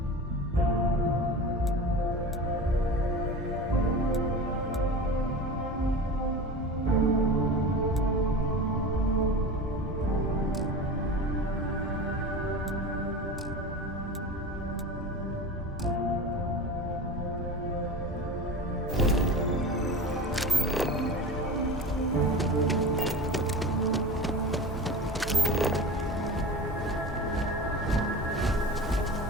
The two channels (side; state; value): both; normal; correlation 0.31